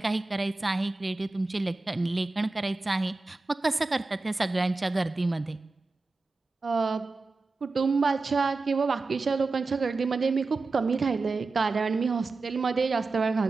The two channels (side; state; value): left; quieter; 3.6 dB